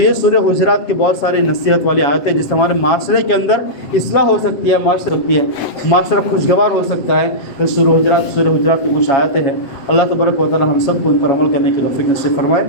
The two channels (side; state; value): right; late; 7.8 ms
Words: سورہ حجرات کی بہت ساری نصیحت والی آیتیں جس سے ہمارے معاشرے کے اندر اصلاح ہو سکتی ہے، معاشرہ خوشگوار ہو سکتا ہے۔ سورہ حجرات کی کچھ آیتیں ہیں، اللہ تبارک و تعالیٰ ہم سب کو ان پر عمل کرنے کی توفیق نصیب فرمائے۔